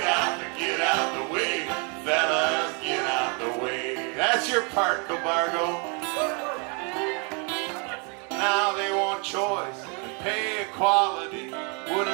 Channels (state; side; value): quieter; left; 34.9 dB